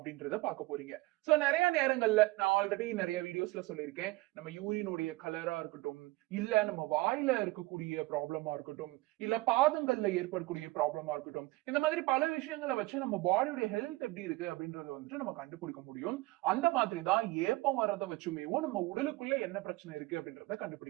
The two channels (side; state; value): left; quieter; 20.7 dB